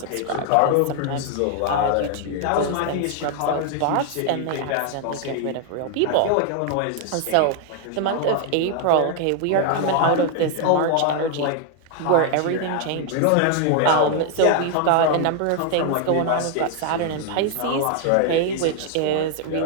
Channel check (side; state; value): both; different; correlation 0.00